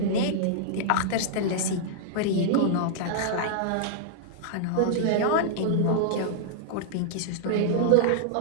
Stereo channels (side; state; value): both; different; correlation -0.01